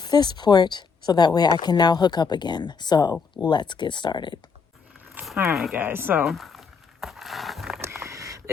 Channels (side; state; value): right; quieter; 5.5 dB